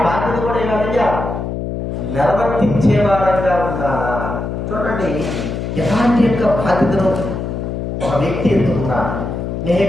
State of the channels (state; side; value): noise; left; hum, 4 dB below the sound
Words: బాధ్యత కూడా ఏమైనా నిర్వర్తించే వారంగా ఉండాలా. చూడండి ఎలాంటి యొక్క బాధ్యతను ఒక వ్యక్తి ఎత్తుకున్నా.